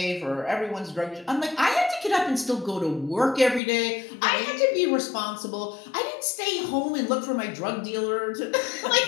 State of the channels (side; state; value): right; drops out; at 3.6 s